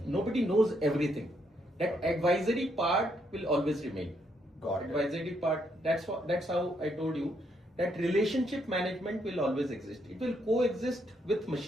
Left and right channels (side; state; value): both; normal; correlation 0.75